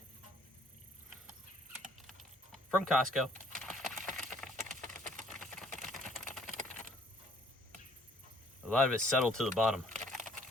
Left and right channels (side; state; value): both; normal; correlation 0.60